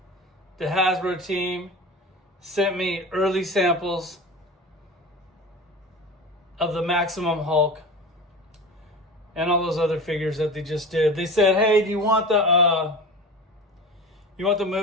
the Hasbro team sent me early samples of the Maximum Hulk and all those other figures that they just did. They said, hey, do you want the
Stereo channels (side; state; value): both; normal; correlation 0.32